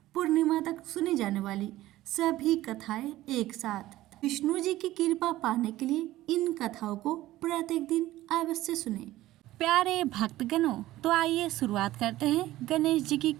पूर्णिमा तक सुनी जाने वाली सभी कथाएं एक साथ। विष्णु जी की कृपा पाने के लिए इन कथाओं को प्रत्येक दिन अवश्य सुने। प्यारे भक्तगणों, तो आइए शुरुआत करते हैं गणेश जी की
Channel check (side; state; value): left; quieter; 15.9 dB